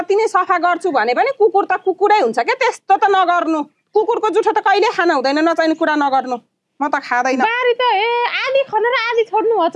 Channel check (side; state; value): both; identical; correlation 1.00